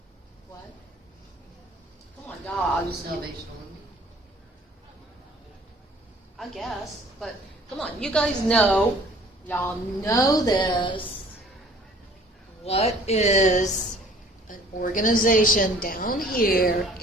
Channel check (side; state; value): both; normal; correlation 0.53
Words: What? Come on, dogs. Salvation Army. I guess, but come on, you guys know, y'all know this. What is an organization down here